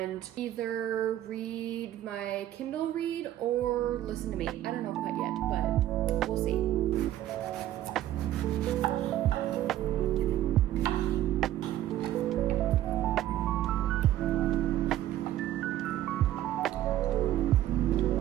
either read my Kindle read or listen to me. I don't know quite yet, but we'll see.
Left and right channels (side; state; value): left; quieter; 13.2 dB